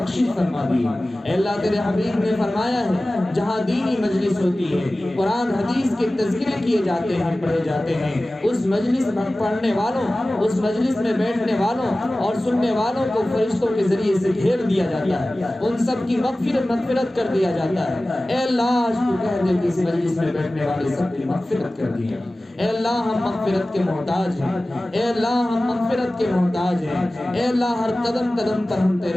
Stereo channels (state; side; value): normal; both; correlation 0.97